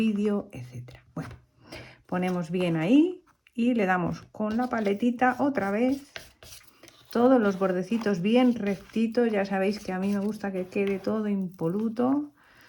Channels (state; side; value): identical; both; correlation 1.00